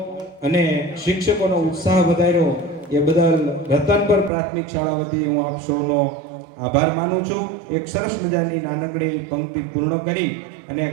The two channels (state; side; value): drops out; left; at 4.3 s